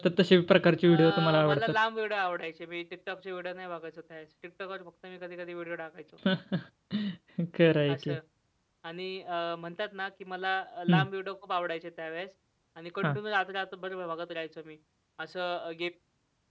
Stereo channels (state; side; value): identical; both; correlation 1.00